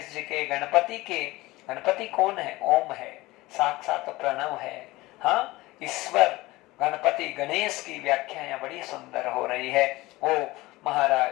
जी के गणपति कौन है? ओम है, साक्षात प्रणव है, हाँ, ईश्वर गणपति गणेश की व्याख्या यहाँ बड़ी सुंदर हो रही है। वो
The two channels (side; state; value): right; quieter; 19.9 dB